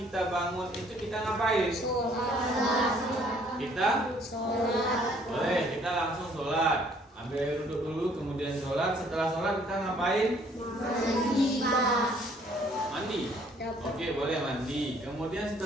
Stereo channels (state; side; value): normal; both; correlation 0.61